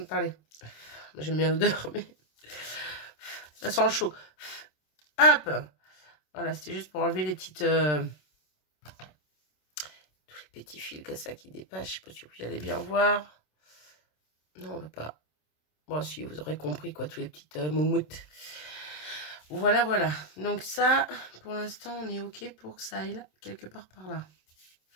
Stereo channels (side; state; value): right; late; 27 ms